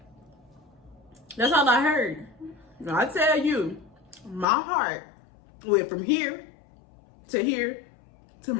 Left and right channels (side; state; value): right; drops out; at 4.5 s